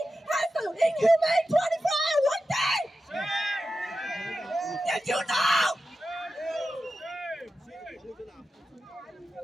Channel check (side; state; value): both; normal; correlation 0.92